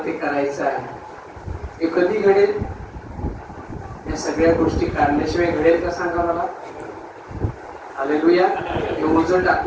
ते करायचं आहे. हे कधी घडेल? या सगळ्या गोष्टी काढल्याशिवाय घडेल का सांगा मला? हालेलुया. हे ओझं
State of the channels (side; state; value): both; identical; correlation 1.00